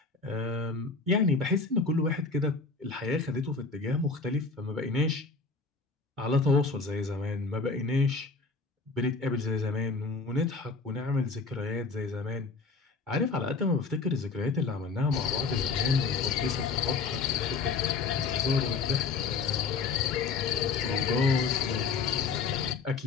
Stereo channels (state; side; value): quieter; right; 4.3 dB